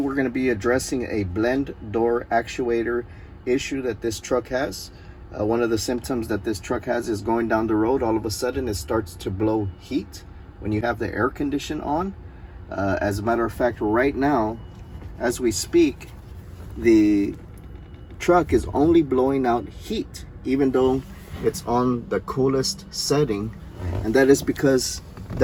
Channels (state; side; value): identical; both; correlation 1.00